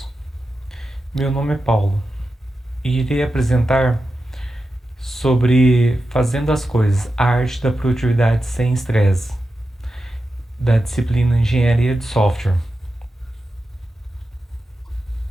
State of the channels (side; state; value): both; normal; correlation 0.91